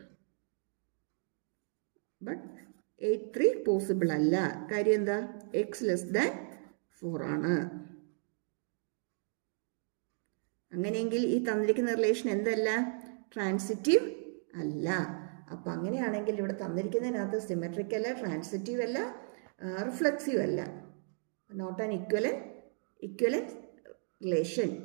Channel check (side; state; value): left; silent; 55 dB below the other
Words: ബട്ട് 8/3 പോസിബിൾ അല്ല. കാര്യം എന്താ? എക്സ് ലെസ് ദാൻ 4 ആണ്. അങ്ങനെയെങ്കിൽ ഈ തന്നിരിക്കുന്ന റിലേഷൻ എന്തല്ല? ട്രാൻസിറ്റീവ് അല്ല. അപ്പം അങ്ങനെയാണെങ്കിൽ ഇവിടെ തന്നിരിക്കുന്നതിനകത്ത് സിമെട്രിക് അല്ല, ട്രാൻസിറ്റീവ് അല്ല, റിഫ്ലെക്സീവ് അല്ല. Not an equivalence relation.